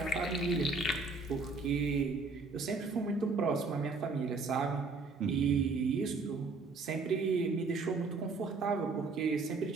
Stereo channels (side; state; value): left; quieter; 4.0 dB